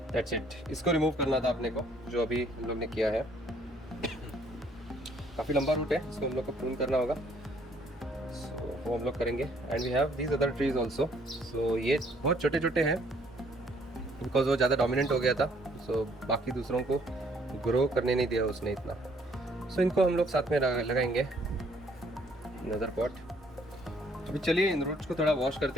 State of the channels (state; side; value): normal; both; correlation 0.64